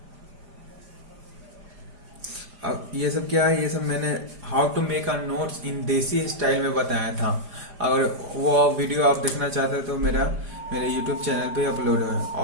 अब ये सब क्या है? ये सब मैंने how to make a notes इन देसी स्टाइल में बताया था। अगर वो वीडियो आप देखना चाहते हैं तो मेरे YouTube चैनल पे अपलोड है,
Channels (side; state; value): left; late; 4.9 ms